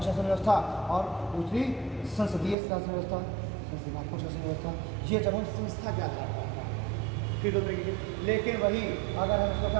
शासन व्यवस्था, और दूसरी संसदीय शासन व्यवस्था, संस्थानात्मक शासन व्यवस्था। ये जब हम संस्था के आधार पर फिर दो तरीके की। लेकिन वही अगर हम इसको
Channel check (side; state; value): left; drops out; at 2.6 s